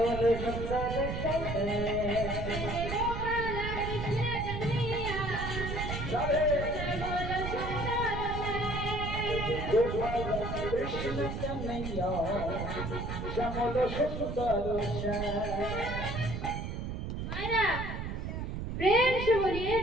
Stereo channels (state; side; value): noise; right; rumble, 4 dB below the sound